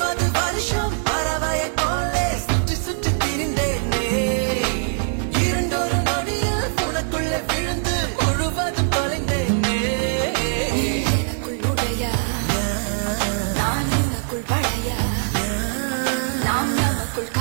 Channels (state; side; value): silent; left; digital silence